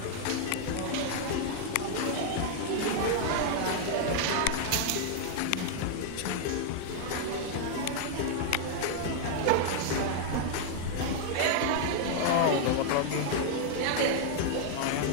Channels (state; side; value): different; both; correlation -0.01